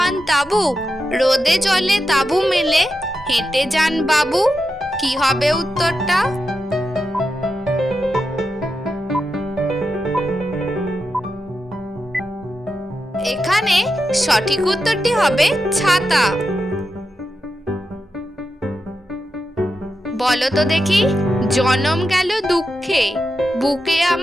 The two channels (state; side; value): normal; both; correlation 0.88